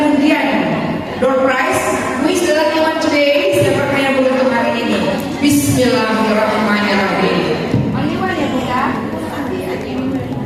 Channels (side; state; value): both; identical; correlation 1.00